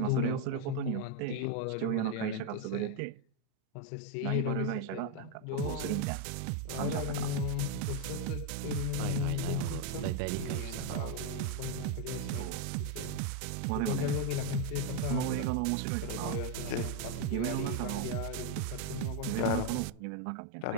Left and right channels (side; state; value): both; different; correlation 0.01